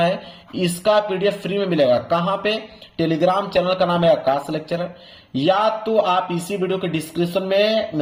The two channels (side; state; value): both; identical; correlation 1.00